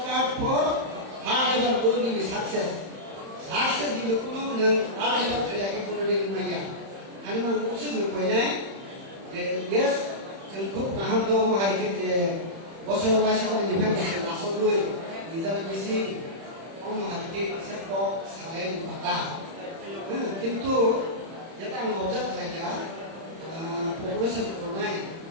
for hard labour বলবি সাকসেস সাকসেস দিলে কোনো নং হার্ড লেবার করে কোনো দিন মাইয়া আমি মান উসুল কইনাय yes जों খুব गाहाम दं हारिके जे बोसोराव वाइसाव निफ्राय नासबो निजा बेसि अम हारिके से पक साले बाता किंतु जेटा आं अबजार्भ खालाया पपुलेशन करनाय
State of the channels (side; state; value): left; late; 31 ms